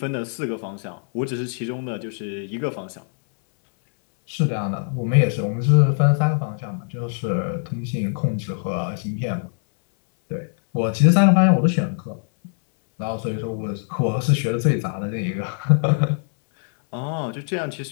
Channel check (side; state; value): right; silent; 63 dB below the other